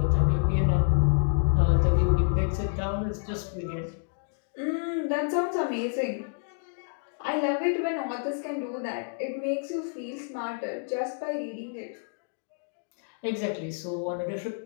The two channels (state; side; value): silent; right; digital silence